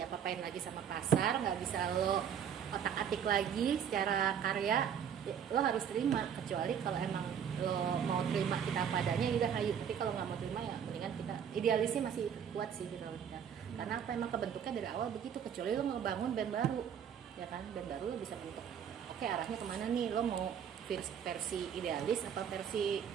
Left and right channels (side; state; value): left; quieter; 8.3 dB